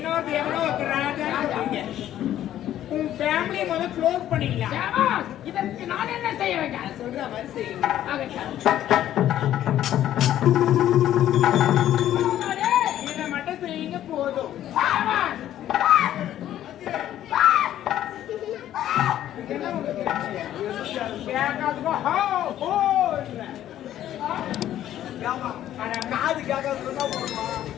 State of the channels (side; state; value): right; quieter; 12.1 dB